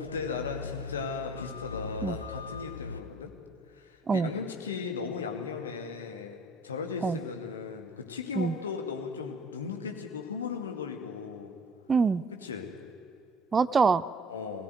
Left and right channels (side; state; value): both; normal; correlation 0.49